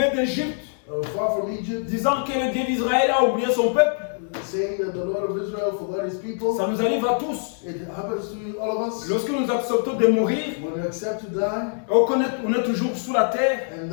d'Égypte, far from Egypt, disant que le Dieu d'Israël a oublié son peuple. saying that the Lord of Israel forgot his people. Ça nous arrive à tous. It happens to all of us. Lorsque nous acceptons de mourir, When we accept to die, on est toujours sous la terre. and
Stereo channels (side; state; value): right; silent; 63 dB below the other